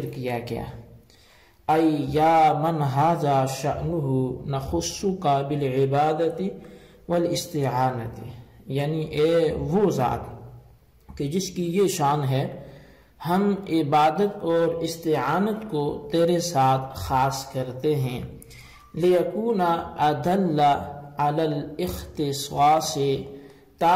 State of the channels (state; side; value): identical; both; correlation 1.00